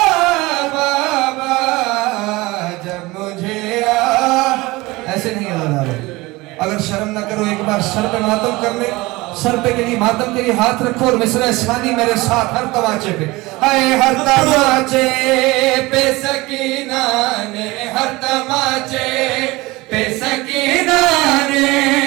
बाबा जब मुझे ऐसे नहीं अज़ादारो, अगर शर्म ना करो एक बार सर पे मातम कर ले, सर पे के लिए मातम के लिए हाथ रखो और मिसरा इस्लामी मेरे साथ हर तमाचे पे। हर तमाचे पे सकीना ने, हर तमाचे पे सकीना ने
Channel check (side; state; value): left; quieter; 21.5 dB